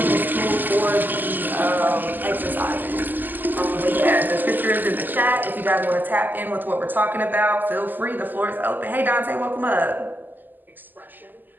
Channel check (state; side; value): late; left; 0.088 ms